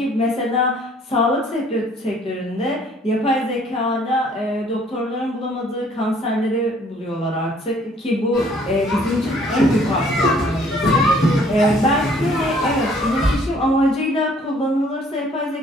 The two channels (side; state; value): both; normal; correlation 0.60